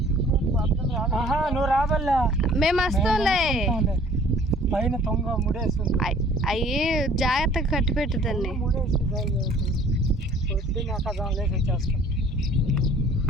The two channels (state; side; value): normal; both; correlation 0.54